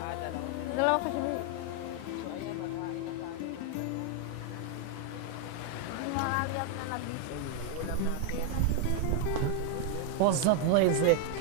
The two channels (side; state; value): both; different; correlation 0.01